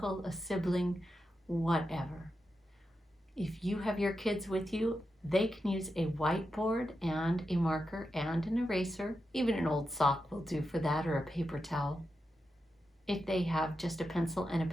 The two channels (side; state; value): both; normal; correlation 0.88